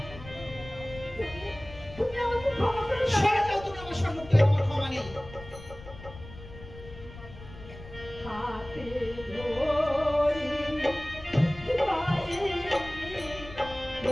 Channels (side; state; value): left; noise; rumble, 16 dB below the sound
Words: তুমি আমাকে ক্ষমা করে দাও। সরে যাও, তুমি আমার সম্মুখ থেকে। আমার ক্ষমা নেই। হাতে ধরি পায়ে